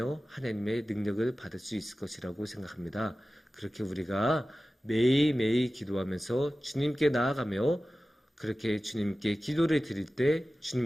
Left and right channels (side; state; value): both; normal; correlation 0.96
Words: 하나님의 능력을 받을 수 있을 것이라고 생각합니다. 그렇게 우리가 매일매일 기도하면서 주님께 나아가며 그렇게 주님께 기도를 드릴 때